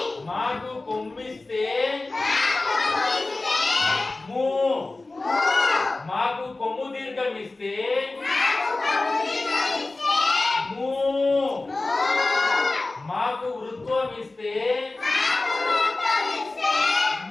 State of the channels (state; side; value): quieter; right; 3.2 dB